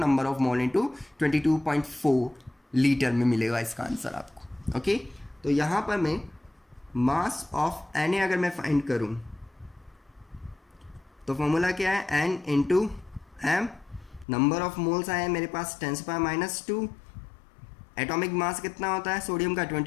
of mole into 22.4 litre में मिलेगा इसका आंसर आपको। ओके, तो यहाँ पर मैं मास ऑफ Na अगर मैं फाइंड करूँ तो फॉर्मूला क्या है N into m, number of moles आए हैं मेरे पास 10⁻², एटॉमिक मास कितना होता है सोडियम का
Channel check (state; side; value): drops out; right; at 14.2 s